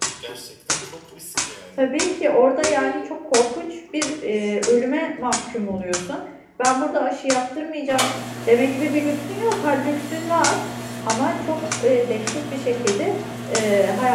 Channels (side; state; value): both; identical; correlation 1.00